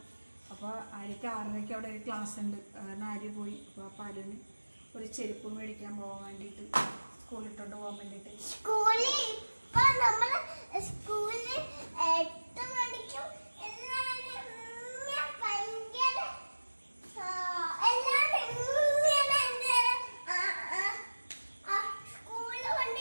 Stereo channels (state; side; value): inverted; both; correlation -1.00